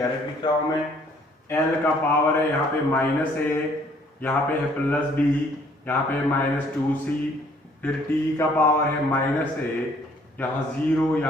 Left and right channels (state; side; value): normal; both; correlation 0.61